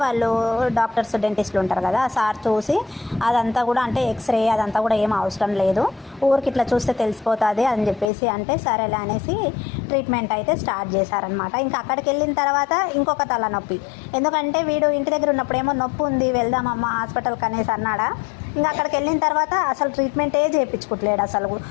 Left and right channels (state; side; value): drops out; right; at 8.1 s